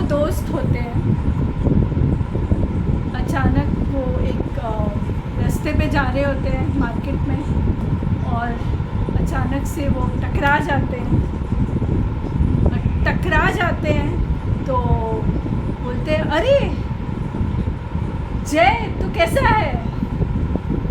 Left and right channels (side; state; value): both; identical; correlation 1.00